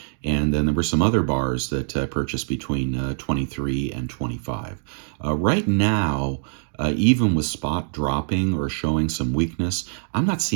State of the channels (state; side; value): silent; left; 59 dB below the other